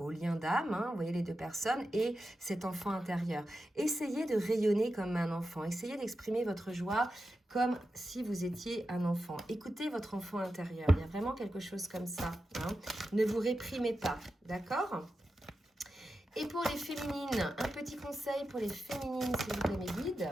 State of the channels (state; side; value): normal; both; correlation 0.90